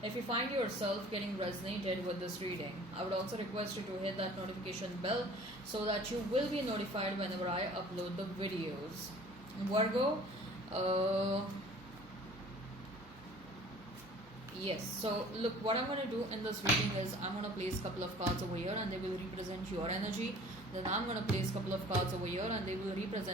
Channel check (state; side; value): normal; both; correlation 0.48